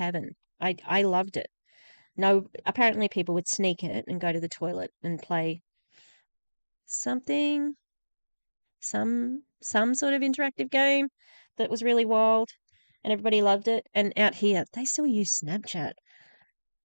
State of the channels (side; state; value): both; inverted; correlation -1.00